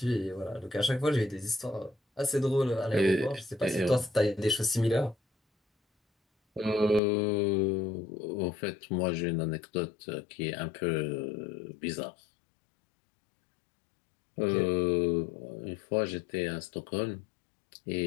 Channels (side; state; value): right; drops out; at 7.0 s